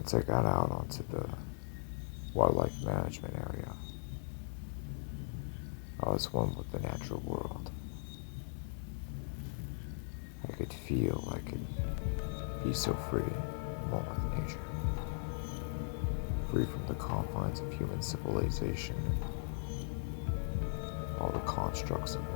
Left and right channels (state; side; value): silent; right; digital silence